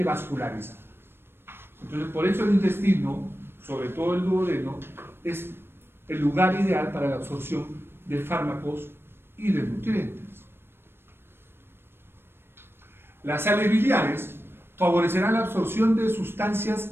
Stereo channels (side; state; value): left; late; 0.11 ms